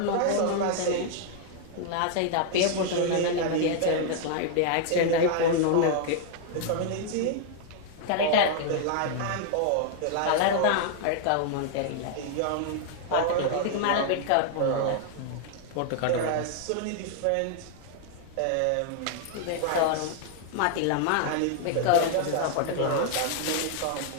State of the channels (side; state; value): both; different; correlation -0.01